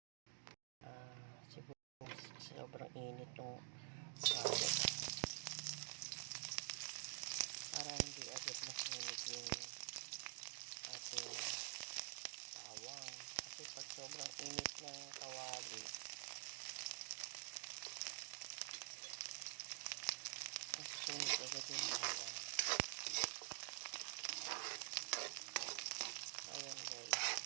sibuyas. Sobrang init yung kawali. Para hindi agad masunog yung ating bawang. Kasi pag sobrang init ng kawali, masusunog agad yung bawang. Ayan guys.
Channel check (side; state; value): left; silent; digital silence